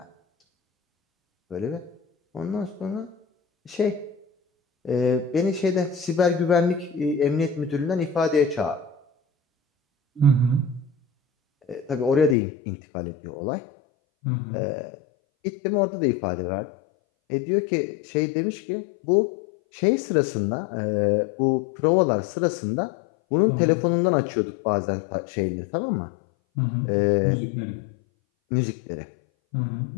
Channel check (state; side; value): drops out; right; at 12.4 s